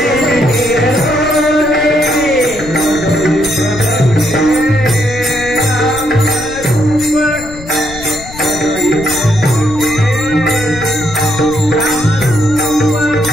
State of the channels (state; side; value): noise; left; rumble, 14 dB below the sound